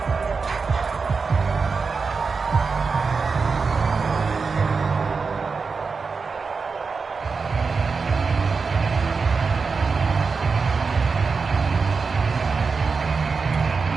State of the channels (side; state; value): left; quieter; 4.8 dB